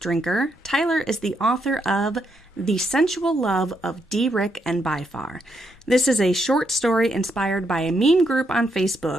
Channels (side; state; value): both; normal; correlation 0.78